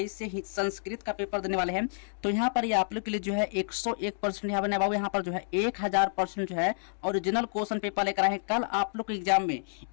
से ही संस्कृत का पेपर देने वाले हैं, तो यहाँ पर ये आप लोग के लिए जो है 101% यहाँ बने बाबू, यहाँ पर जो है 1000% जो है ओरिजिनल क्वेश्चन पेपर लेकर आए हैं। कल आप लोग के एग्जाम में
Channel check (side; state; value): right; silent; digital silence